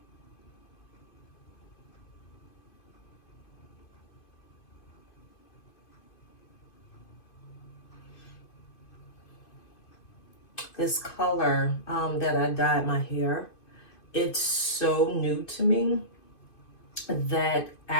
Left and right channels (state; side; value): late; right; 2.5 ms